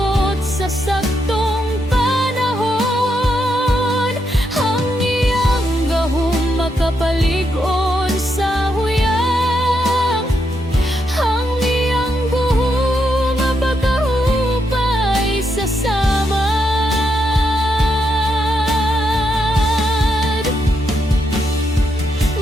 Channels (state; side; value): normal; both; correlation 0.81